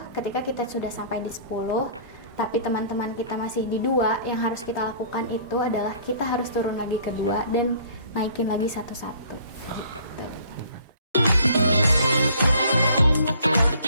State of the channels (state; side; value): inverted; both; correlation -0.53